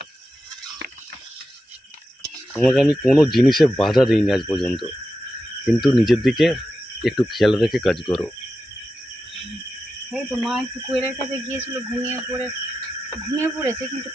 তোমাকে আমি কোনো জিনিসে বাধা দিইনি আজ পর্যন্ত, কিন্তু নিজের দিকে একটু খেয়াল রেখে কাজ করো। এই তো মা একটু কোয়েলের কাছে গিয়েছিল, ঘুমিয়ে পড়েছে, কিন্তু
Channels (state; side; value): normal; both; correlation 0.90